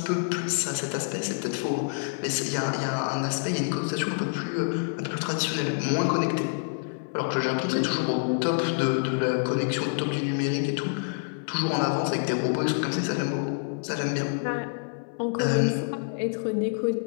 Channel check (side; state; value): right; silent; 60 dB below the other